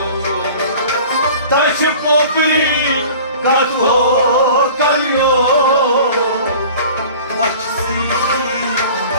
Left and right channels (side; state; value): both; inverted; correlation -0.43